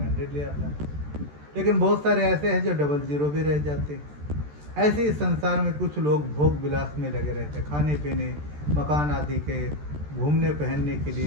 100 ले आता है, लेकिन बहुत सारे ऐसे हैं जो 00 भी रह जाते हैं। ऐसे ही संसार में कुछ लोग भोग विलास में लगे रहते हैं, खाने पीने, मकान आदि के, घूमने पहनने के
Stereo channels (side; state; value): left; late; 14 ms